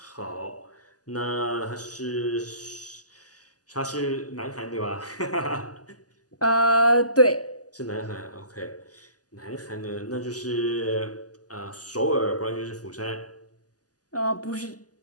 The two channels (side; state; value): right; late; 0.67 ms